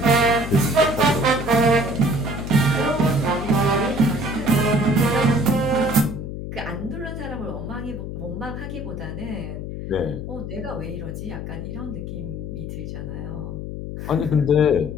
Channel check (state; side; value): noise; left; hum, 7 dB below the sound